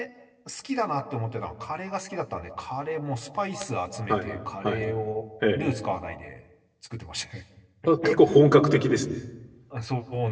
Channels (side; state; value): both; identical; correlation 1.00